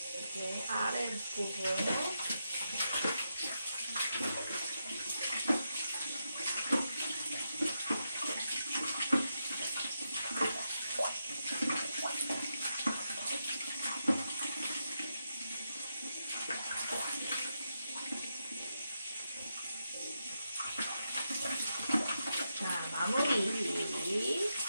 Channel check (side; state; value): both; inverted; correlation -0.85